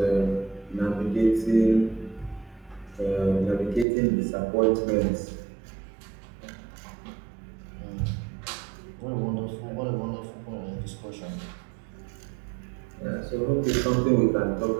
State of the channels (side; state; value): left; drops out; at 3.9 s